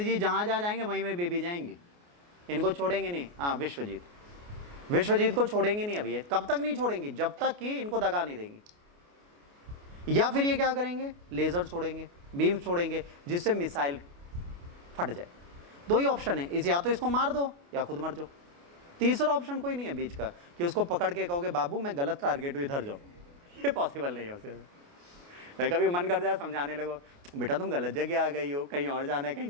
जहाँ जहाँ जाएंगे वहीं में बेबी जाएंगे, इनको छोड़ेंगे नहीं। हाँ, विश्वजीत, विश्वजीत को छोड़ेंगे नहीं अभी। कब तक नहीं छोड़ेंगे, जब तक कि इनको दगा नहीं देंगे। या फिर ये क्या करेंगे, लेजर छोड़ेंगे, बीम छोड़ेंगे, जिससे मिसाइल फट जाए। दो ही ऑप्शन है, इस या तो इसको मार दो या खुद मर जाओ, तीसरा ऑप्शन कोई नहीं है बीच का कि उसको पकड़ के कहोगे बाबू मैं गलत टारगेट हूँ इधर जाओ, ये पॉसिबल नहीं है उसके। कभी मन कर जाए समझाने लगो बेटा तुम गलत जगह आ गई हो, कहीं और जाना है,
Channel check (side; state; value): left; late; 29 ms